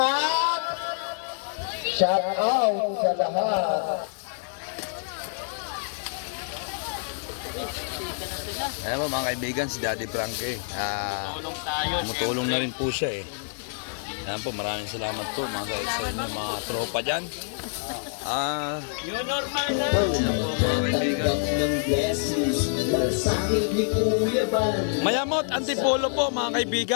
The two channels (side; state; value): right; silent; digital silence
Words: at shout out sa lahat. Ayan po mga kaibigan, si Daddy Frankie. Tumutulong na rin po siya eh. Ayan po, maraming salamat po mga kaibigan, mga tropa dyan. Ayan po mga kaibigan. Mayamot Antipolo po mga